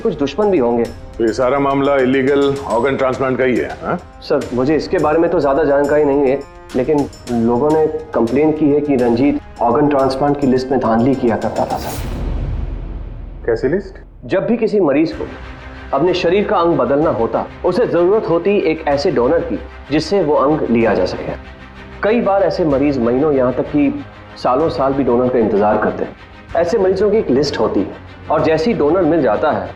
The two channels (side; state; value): both; identical; correlation 1.00